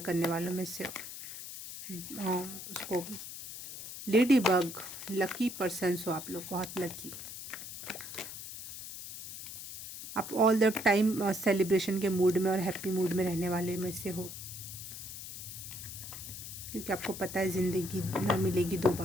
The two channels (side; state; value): left; noise; hiss, 10 dB below the sound